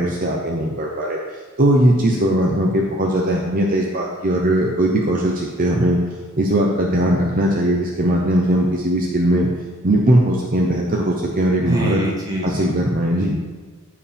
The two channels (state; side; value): normal; both; correlation 0.61